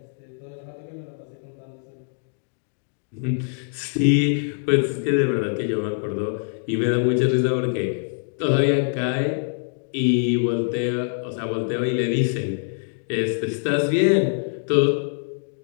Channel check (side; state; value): right; silent; digital silence